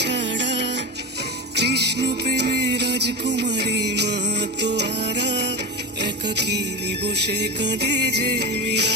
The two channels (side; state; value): both; normal; correlation 0.21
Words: সাড়া, কৃষ্ণ প্রেমে রাজকুমারী মাতোয়ারা। একাকিনী বসে কাঁদে যে